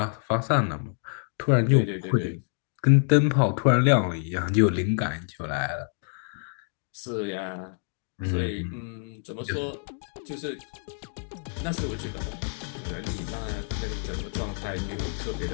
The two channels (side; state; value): right; silent; digital silence